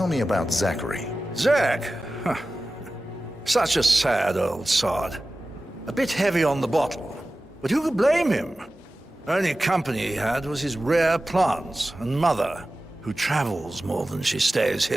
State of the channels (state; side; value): normal; both; correlation 0.95